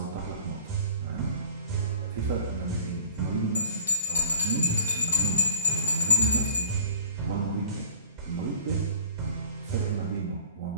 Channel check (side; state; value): both; inverted; correlation -0.49